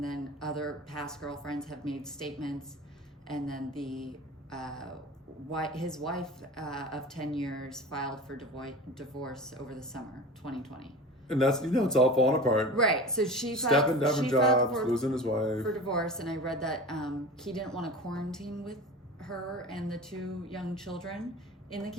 then other past girlfriends have made statements. And then the his wife of 10 years filed for divorce over the summer 2020. And that's, it's all falling apart. Right. So she stepping down from jobs, losing his wife. For divorce. And I read that he didn't want to quarantine with her and the 2 young children in the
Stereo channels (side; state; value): both; normal; correlation 0.34